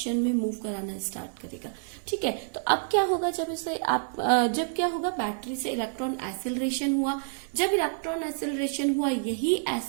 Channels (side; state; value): left; silent; digital silence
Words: में मूव कराना स्टार्ट करेगा, ठीक है। तो अब क्या होगा, जब इसे आप जब क्या होगा, बैटरी से इलेक्ट्रॉन एक्सेलरेशन हुआ। जब इलेक्ट्रॉन एक्सेलरेशन हुआ, यही